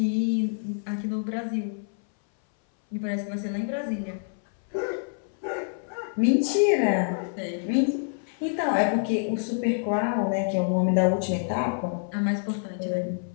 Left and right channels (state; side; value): silent; right; 60 dB below the other